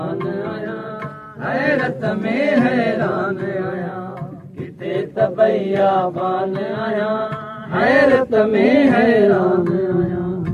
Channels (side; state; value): both; identical; correlation 1.00